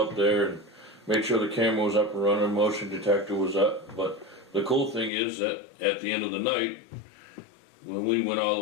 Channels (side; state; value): right; drops out; at 5.1 s